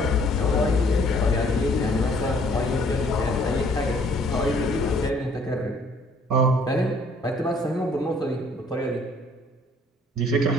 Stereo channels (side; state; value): both; normal; correlation 0.60